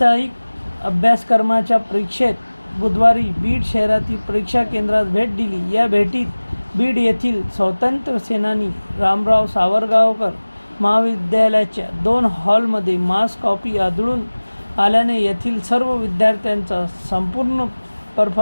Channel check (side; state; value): both; inverted; correlation -1.00